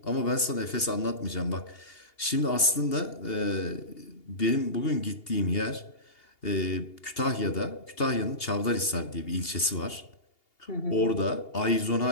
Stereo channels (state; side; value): late; right; 2.8 ms